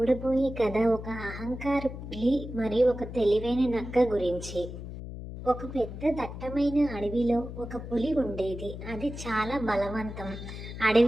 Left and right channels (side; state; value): left; noise; hum, 10 dB below the sound